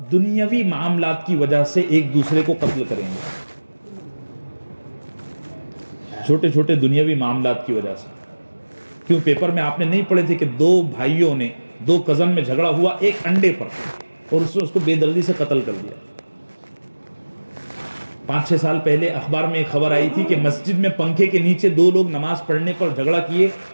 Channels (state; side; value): inverted; both; correlation -1.00